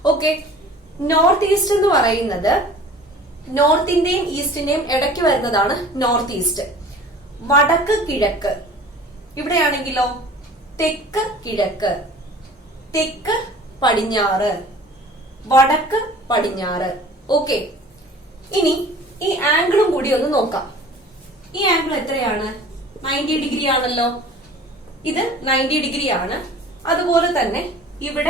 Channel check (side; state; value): both; normal; correlation 0.45